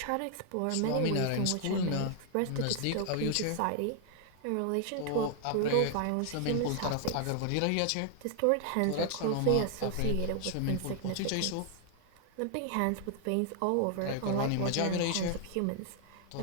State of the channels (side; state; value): both; different; correlation 0.00